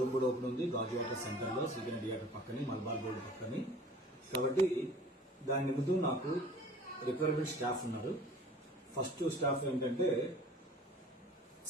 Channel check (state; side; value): normal; both; correlation 0.46